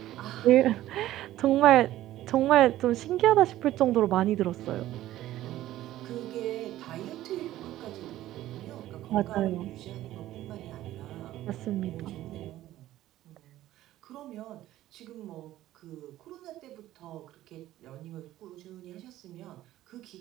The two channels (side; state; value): left; quieter; 14.4 dB